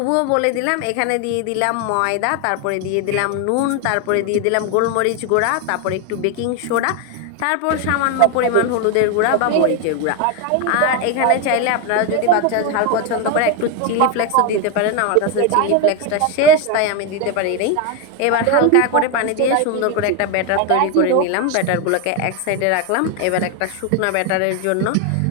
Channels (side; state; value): both; different; correlation 0.01